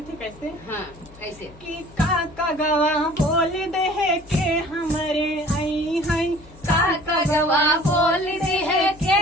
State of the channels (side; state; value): left; noise; hum, 22 dB below the sound